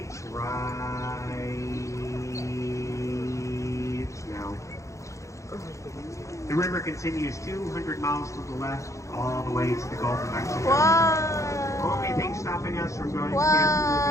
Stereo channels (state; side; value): late; right; 0.15 ms